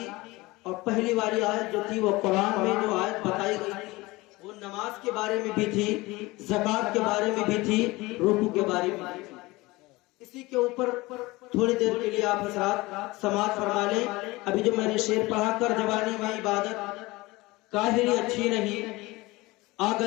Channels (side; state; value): right; quieter; 21.4 dB